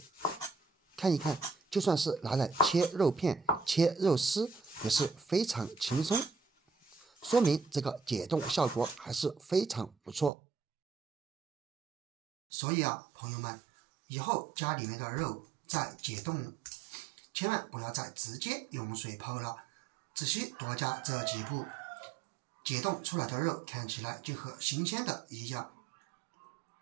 看一看，就算是拿來切肉片、切肉絲也是非常輕鬆，說明這個解凍效果還是非常不錯。所以啊，朋友們，以後家裡面的肉在解凍，千萬不要再直接用水泡了，只需多加這幾步，解凍出來的肉看起來就和新鮮的一樣，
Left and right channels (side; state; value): left; drops out; at 10.3 s